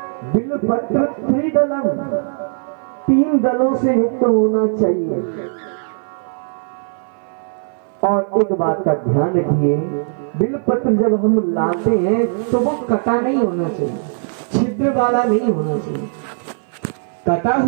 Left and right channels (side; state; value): left; silent; 57 dB below the other